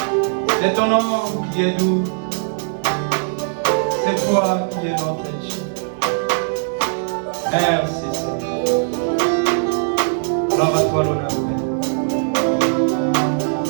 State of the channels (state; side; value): silent; left; 66 dB below the other